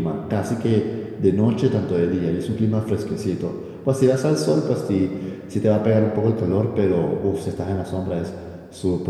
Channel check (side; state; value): both; identical; correlation 1.00